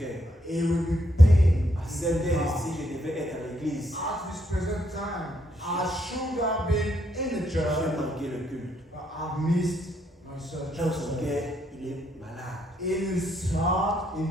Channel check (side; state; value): both; normal; correlation 0.75